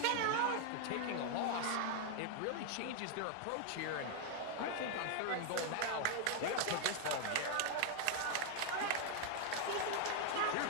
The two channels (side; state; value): both; different; correlation 0.00